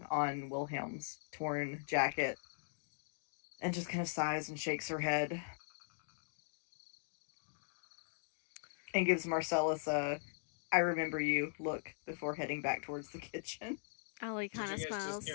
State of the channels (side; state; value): right; silent; digital silence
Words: on Wilhelm's torn jacket and just kind of sighs and shakes her head and gives Marcellus a "I remember you" look before heading back towards the kitchen. Alli kind of Did you guys smiles.